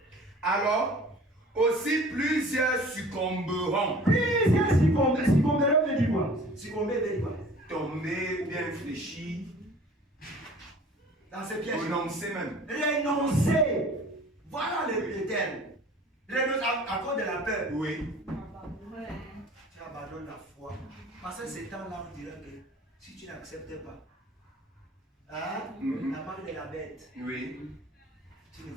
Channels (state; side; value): normal; both; correlation 0.47